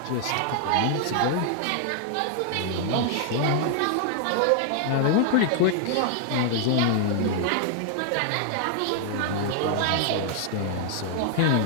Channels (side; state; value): both; different; correlation 0.00